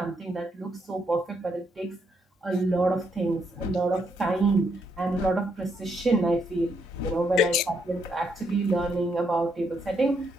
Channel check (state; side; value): normal; both; correlation 0.76